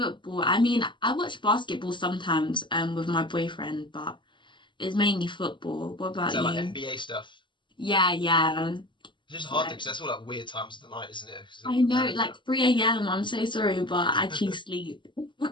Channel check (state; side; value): late; right; 0.23 ms